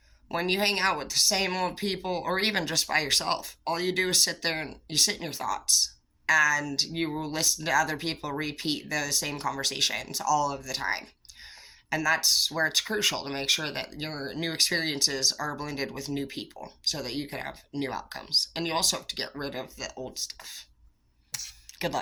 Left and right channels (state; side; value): identical; both; correlation 1.00